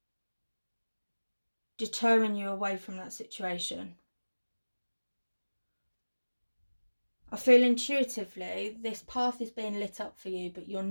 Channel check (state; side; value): inverted; both; correlation -1.00